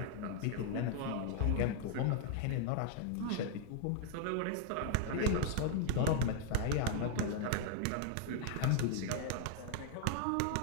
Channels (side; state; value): both; different; correlation 0.00